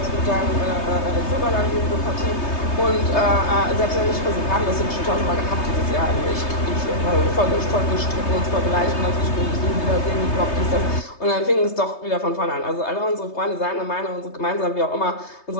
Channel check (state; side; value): late; right; 3.3 ms